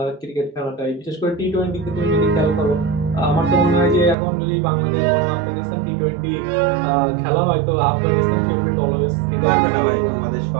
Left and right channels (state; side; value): drops out; left; at 4.2 s